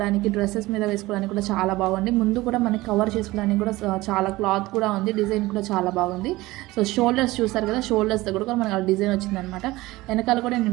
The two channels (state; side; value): quieter; left; 19.3 dB